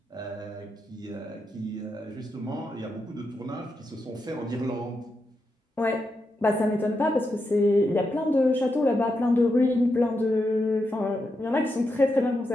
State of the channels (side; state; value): both; normal; correlation 0.85